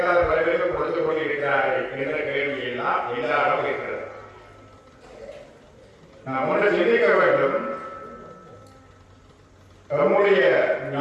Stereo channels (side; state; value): both; identical; correlation 1.00